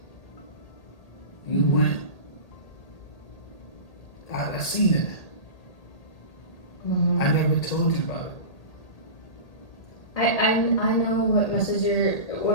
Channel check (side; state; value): right; late; 1.8 ms